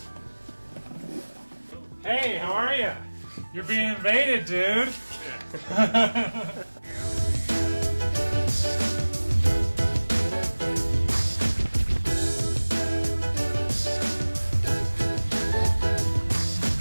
Hey, how are you? You're being invaded, dude. We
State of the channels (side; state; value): both; inverted; correlation -1.00